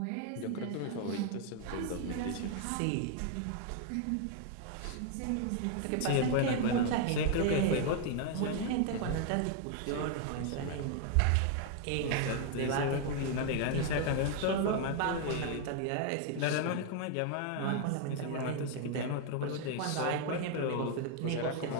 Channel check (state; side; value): different; both; correlation 0.00